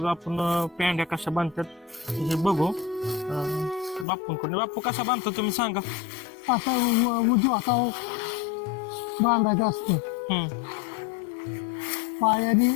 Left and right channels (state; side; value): drops out; right; at 4.0 s